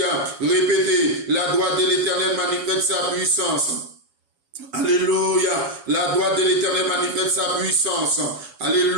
Répétez, la droite de l'Éternel manifeste sa puissance. Alléluia. La droite de l'Éternel manifeste sa puissance.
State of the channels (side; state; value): left; late; 7.1 ms